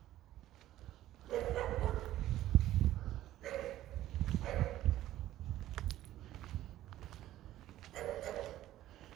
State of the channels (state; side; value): quieter; left; 13.9 dB